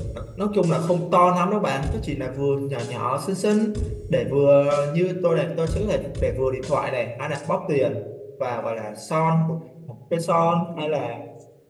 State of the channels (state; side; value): identical; both; correlation 1.00